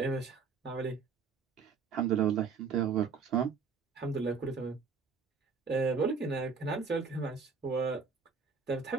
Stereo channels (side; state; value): left; quieter; 5.3 dB